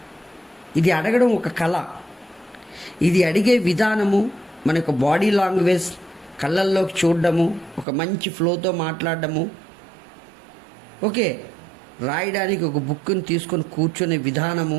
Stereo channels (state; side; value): drops out; left; at 7.9 s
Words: ఇది అడగడం ఒక కళ. ఇది అడిగే విధానము, మన యొక్క బాడీ లాంగ్వేజ్, కళ్ళల్లోకి చూడడము, ఒక మంచి ఫ్లోతో మాట్లాడడము, ఓకే, రాయడానికి ఒక బుక్ని తీసుకొని కూర్చునే విధానము,